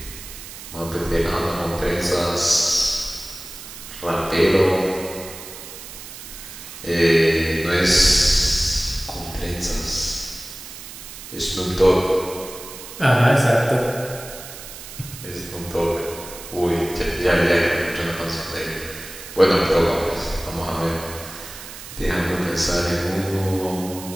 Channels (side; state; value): right; noise; hiss, 13 dB below the sound